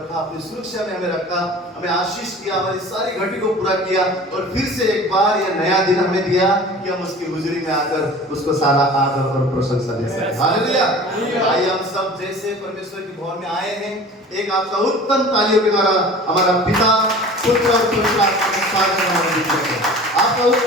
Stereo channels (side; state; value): both; normal; correlation 0.42